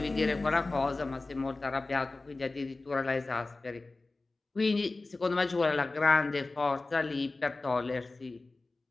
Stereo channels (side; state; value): right; quieter; 3.3 dB